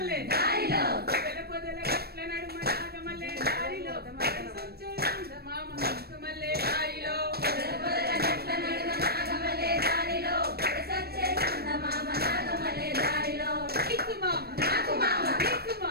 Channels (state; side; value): late; left; 0.46 ms